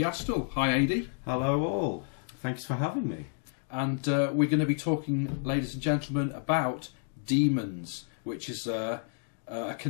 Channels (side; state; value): right; silent; 55 dB below the other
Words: Hi Adie. Hello all, thanks for having me. And we're going to be talking, ladies and gentlemen, about demons, which is a